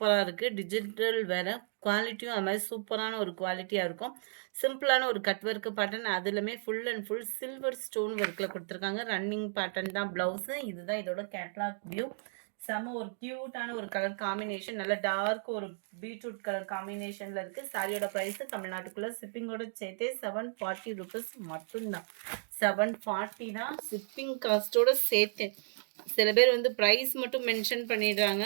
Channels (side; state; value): left; silent; digital silence